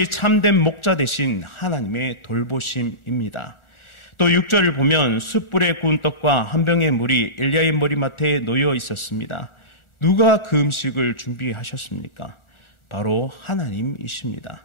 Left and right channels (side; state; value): right; late; 1.4 ms